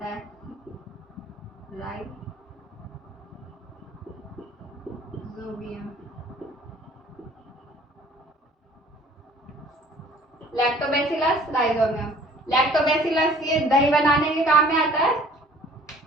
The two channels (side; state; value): both; normal; correlation 0.53